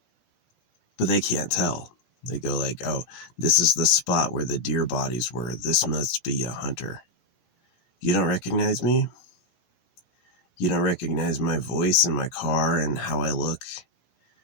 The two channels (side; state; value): right; late; 17 ms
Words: But they can't tell. They go like, oh, this is the spot where the deer bodies were. This must be a hunter. You don't recognize me? You don't recognize my voice and my car and how I look?